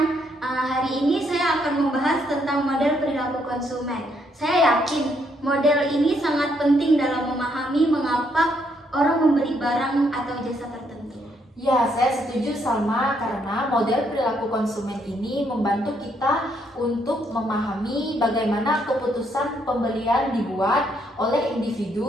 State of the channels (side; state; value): both; normal; correlation 0.73